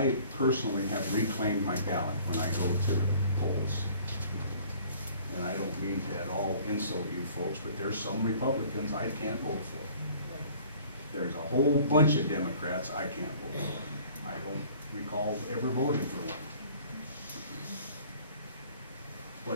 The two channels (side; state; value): both; inverted; correlation -0.52